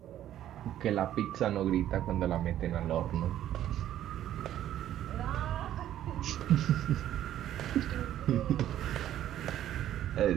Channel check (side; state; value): left; quieter; 11.9 dB